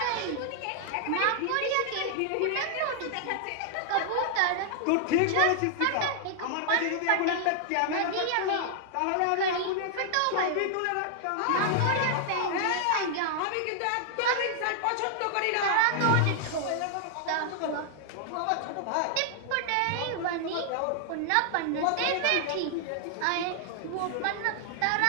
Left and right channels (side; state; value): both; different; correlation 0.00